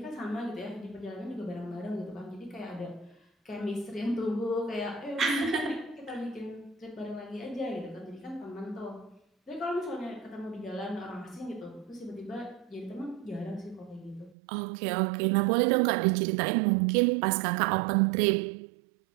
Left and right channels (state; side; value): drops out; left; at 14.4 s